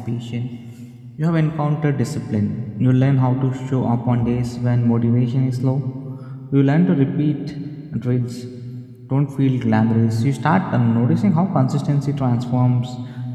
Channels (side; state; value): both; identical; correlation 1.00